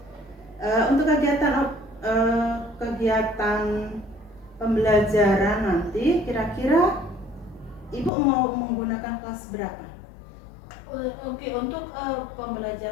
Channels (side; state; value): right; drops out; at 8.1 s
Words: Untuk kegiatan pembelajaran nanti, kira-kira Ibu mau menggunakan kelas berapa? Oke, untuk